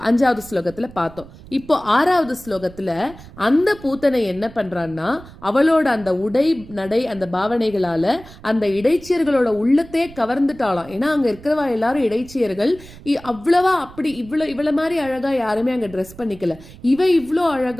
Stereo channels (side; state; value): right; noise; rumble, 19 dB below the sound